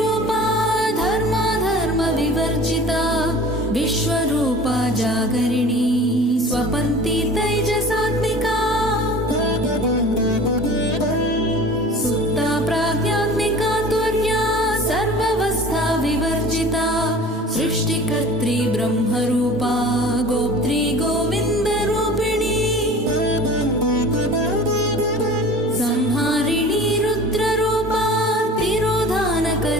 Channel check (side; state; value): both; normal; correlation 0.42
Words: धर्माधर्मविवर्जिता विश्वरूपा जागरिणी स्वपन्ती तैजसात्मिका सुप्ता प्राज्ञात्मिका तुर्या सर्वावस्था विवर्जिता सृष्टिकर्त्री ब्रह्मरूपा गोप्त्री गोविन्दरूपिणी संहारिणी रुद्ररूपा